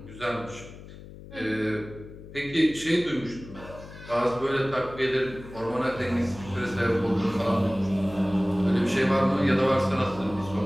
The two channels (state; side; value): noise; left; hum, 16 dB below the sound